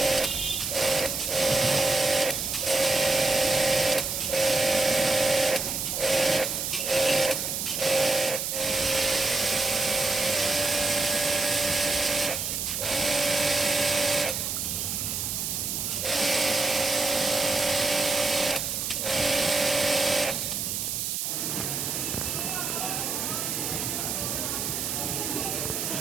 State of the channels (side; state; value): right; noise; hiss, 2 dB below the sound